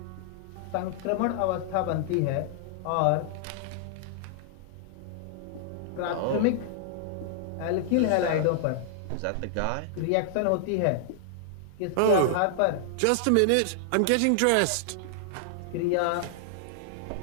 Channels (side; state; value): both; different; correlation -0.01